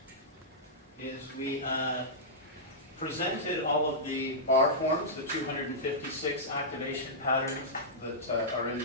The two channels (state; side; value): normal; both; correlation -0.12